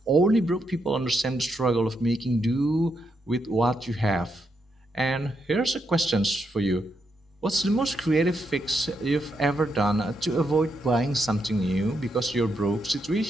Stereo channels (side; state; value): both; normal; correlation 0.81